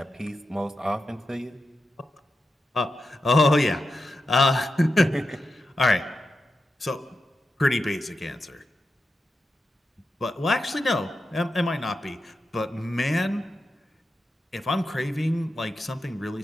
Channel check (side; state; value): both; normal; correlation 0.89